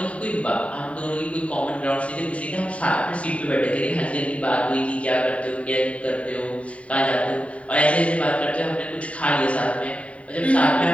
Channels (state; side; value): late; right; 0.065 ms